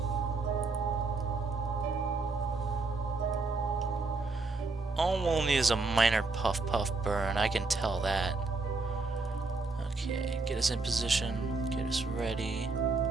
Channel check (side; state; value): left; quieter; 3.8 dB